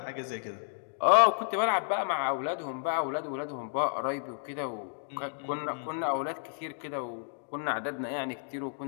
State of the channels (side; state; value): right; silent; digital silence